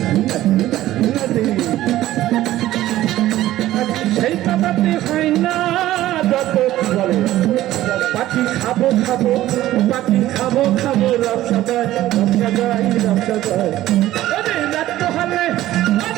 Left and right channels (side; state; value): left; quieter; 14.6 dB